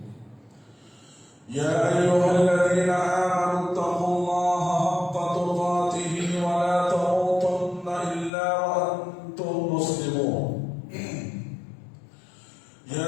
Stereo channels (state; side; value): drops out; right; at 8.3 s